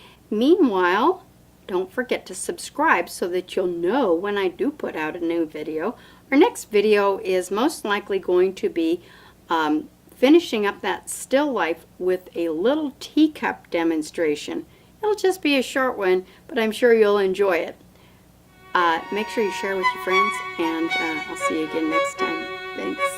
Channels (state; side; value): identical; both; correlation 1.00